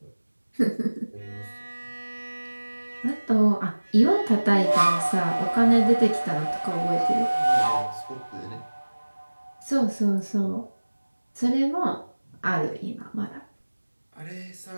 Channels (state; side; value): inverted; both; correlation -1.00